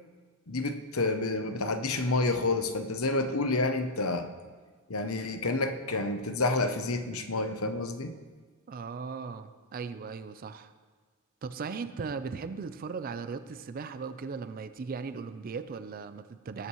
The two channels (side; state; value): both; normal; correlation -0.04